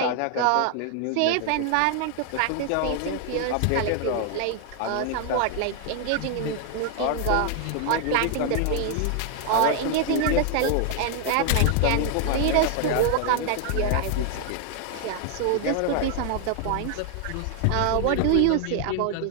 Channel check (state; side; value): different; both; correlation 0.00